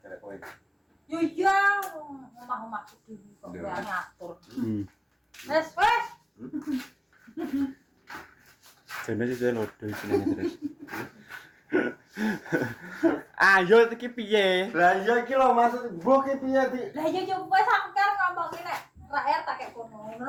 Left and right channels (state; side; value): identical; both; correlation 1.00